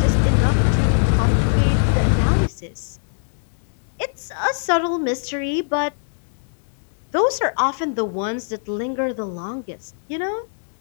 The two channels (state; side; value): silent; right; digital silence